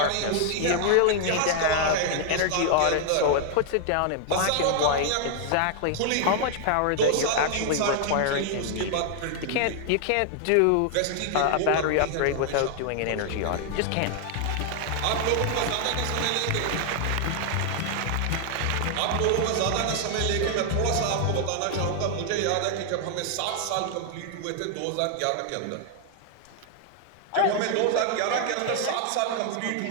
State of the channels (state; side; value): different; both; correlation 0.00